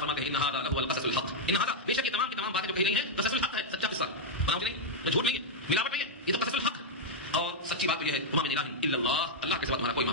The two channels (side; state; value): both; normal; correlation -0.03